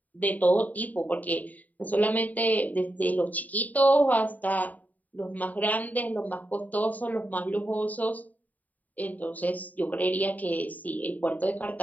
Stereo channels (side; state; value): right; late; 0.076 ms